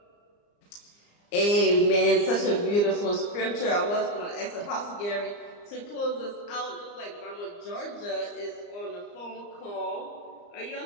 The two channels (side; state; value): right; late; 34 ms